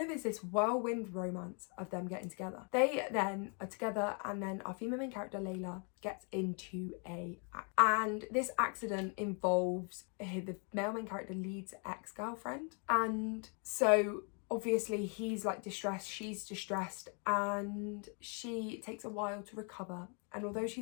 of is this whirlwind romance of them getting together. They then are together, and then our female main character Layla gets into and this accident involves the male main character Lead's ex-girlfriend, and so obviously he's like distressed, she's distressed, and she takes a while to recover. And although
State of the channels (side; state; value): right; quieter; 38.3 dB